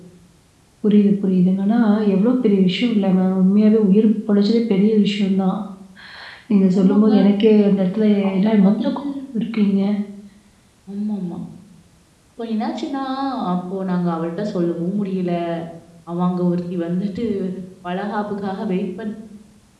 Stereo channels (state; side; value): identical; both; correlation 1.00